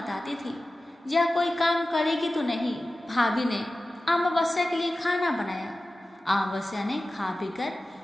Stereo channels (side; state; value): both; normal; correlation 0.95